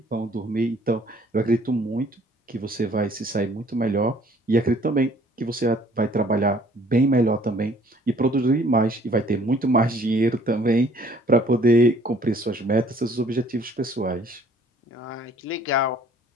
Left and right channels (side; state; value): both; normal; correlation 0.58